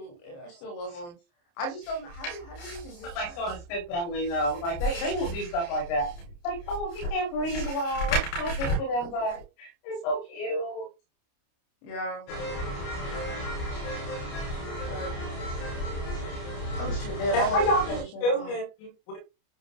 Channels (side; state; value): right; late; 29 ms